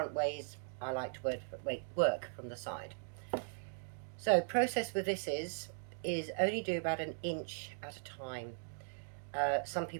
ways. I like to work from the side. So process with this is only do about 1 inch at a time. Some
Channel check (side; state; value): left; silent; digital silence